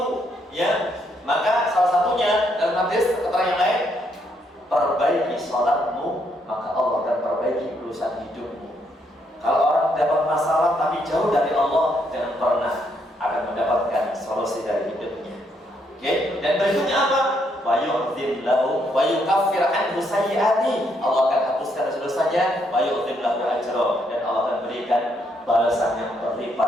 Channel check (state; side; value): normal; both; correlation 0.74